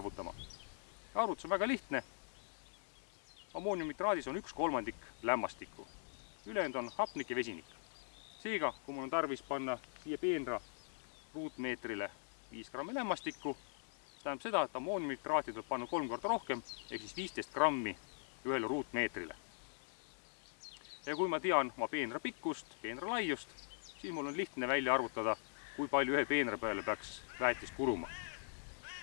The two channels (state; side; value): silent; right; digital silence